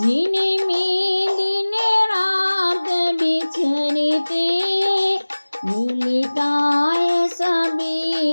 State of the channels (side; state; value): both; inverted; correlation -1.00